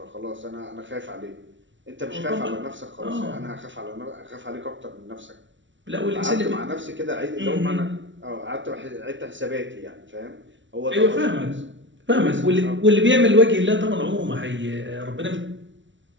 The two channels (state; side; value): late; left; 0.55 ms